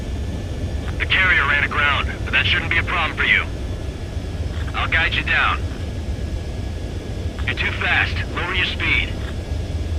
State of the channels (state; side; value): identical; both; correlation 1.00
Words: The carrier ran aground, but that shouldn't be a problem for you. I'll guide you down. You're too fast. Lower your speed.